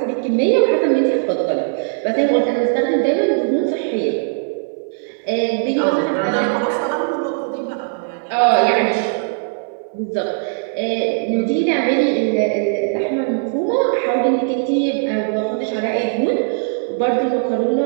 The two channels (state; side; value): silent; left; 67 dB below the other